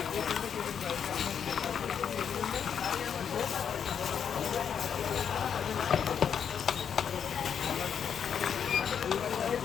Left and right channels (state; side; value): quieter; right; 7.8 dB